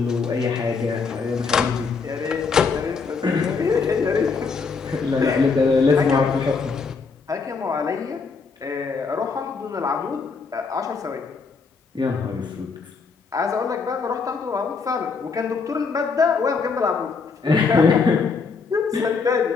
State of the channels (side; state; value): right; quieter; 4.9 dB